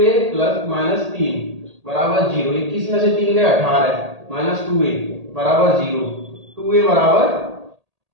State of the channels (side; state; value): left; late; 1.8 ms